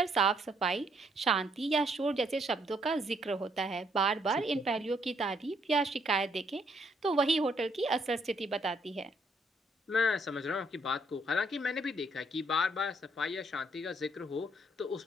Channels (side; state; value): both; normal; correlation 0.70